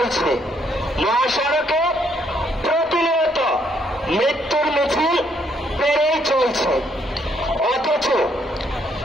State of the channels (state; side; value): normal; both; correlation 0.70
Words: মহাসড়কে প্রতিনিয়ত মৃত্যুর মিছিল পেরেই চলছে। অথচ